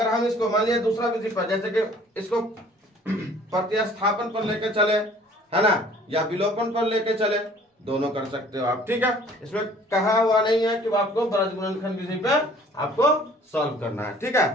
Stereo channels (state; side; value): normal; both; correlation 0.53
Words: हम इसको मान लिया दूसरा विधि पर, जैसे कि इसको प्रतिस्थापन पर लेके चले है ना, या विलोपन पर लेके चले, दोनों कर सकते हो आप। ठीक है, इसमें कहा हुआ नहीं है कि आपको ब्रज गुणनखंड विधि पे आपको सॉल्व करना है। ठीक